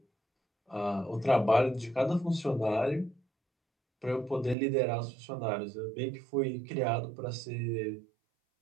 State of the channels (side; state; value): left; drops out; at 4.5 s